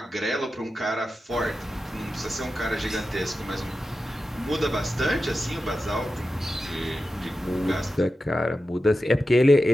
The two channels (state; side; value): normal; both; correlation 0.92